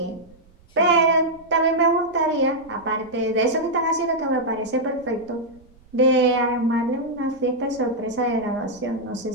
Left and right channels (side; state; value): right; noise; rumble, 28 dB below the sound